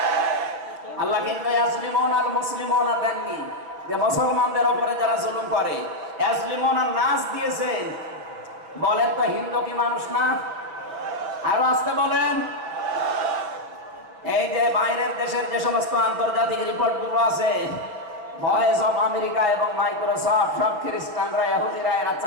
আল্লাহ কিন্তু ইয়াজলিমুন আল মুসলিমুনা দেননি, যে মুসলমানদের উপরে যারা জুলুম করে ইয়াজলিমুনা নাস দিয়েছেন। বলেন তো হিন্দু কি মানুষ না? আরো আসতে বলেন। এই যে বাইরের দেশের যে সমস্ত আন্তর্জাতিক রিপোর্টগুলো আছে, ভয়েস অফ আমেরিকা এবং মাইক্রোসফট, সব খ্রিস্টানরা ইহুদিরা এরা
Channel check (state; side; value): late; left; 5.8 ms